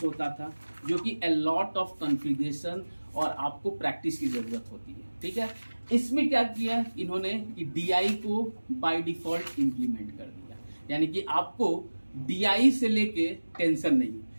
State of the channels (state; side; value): inverted; both; correlation -1.00